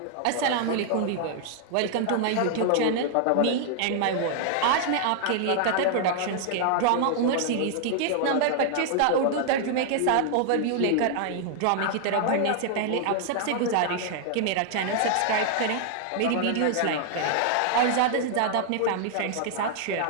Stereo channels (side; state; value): both; different; correlation 0.00